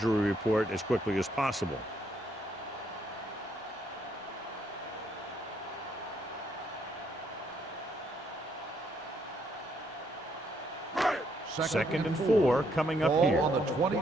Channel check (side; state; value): both; normal; correlation 0.72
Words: report as quickly as possible. Second and 4 coming up here. Ball on the